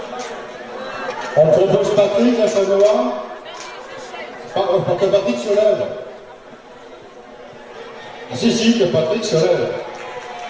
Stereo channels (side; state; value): both; identical; correlation 1.00